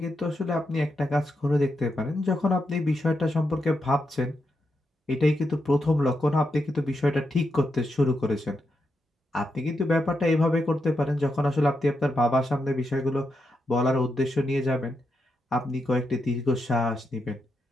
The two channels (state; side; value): normal; both; correlation 0.84